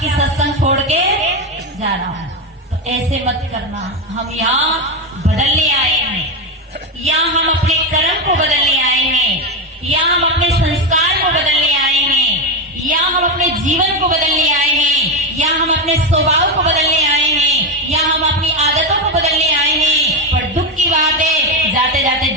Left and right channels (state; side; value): normal; both; correlation 0.11